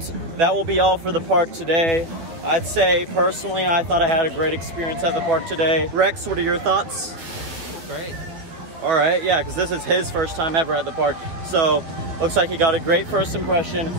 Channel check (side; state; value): left; late; 12 ms